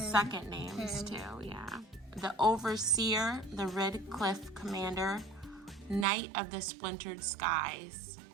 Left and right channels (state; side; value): drops out; left; at 6.1 s